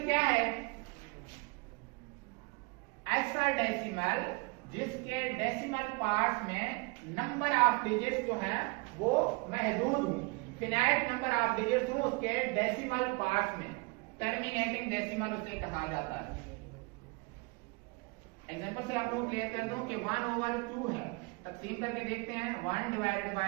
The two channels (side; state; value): left; quieter; 29.3 dB